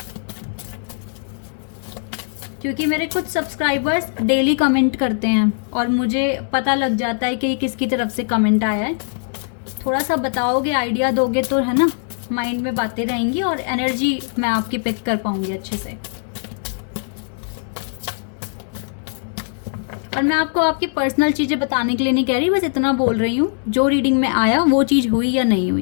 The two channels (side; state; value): right; silent; digital silence